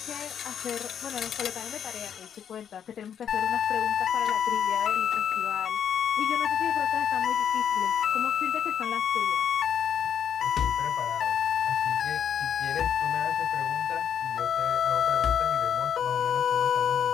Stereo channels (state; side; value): quieter; right; 8.6 dB